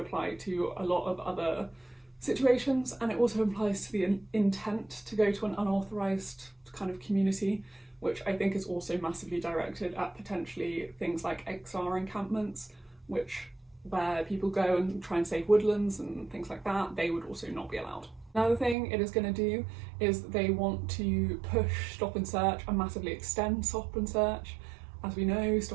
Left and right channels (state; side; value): drops out; left; at 18.8 s